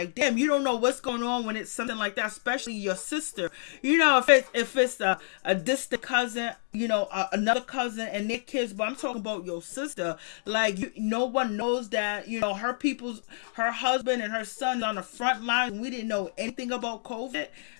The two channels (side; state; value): right; silent; digital silence